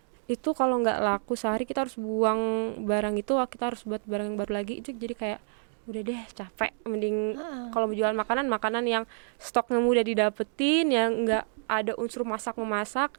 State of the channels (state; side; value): silent; left; 59 dB below the other